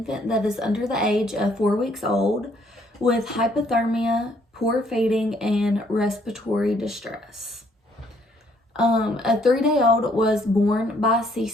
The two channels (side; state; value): both; normal; correlation 0.66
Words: that is under the age of 4 weeks old with hypothermia, poor feeding, and respiratory distress. A 3-day-old was born by